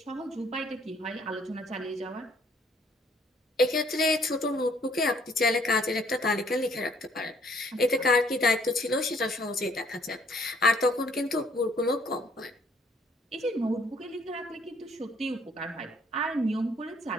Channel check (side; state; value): both; normal; correlation 0.63